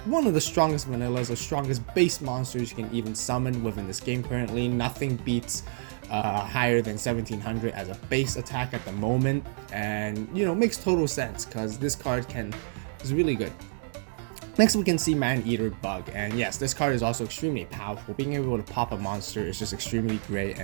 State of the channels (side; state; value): left; silent; digital silence